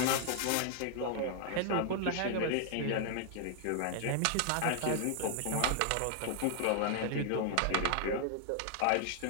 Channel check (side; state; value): both; different; correlation 0.00